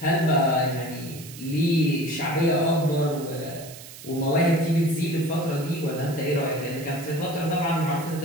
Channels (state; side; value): noise; right; hiss, 16 dB below the sound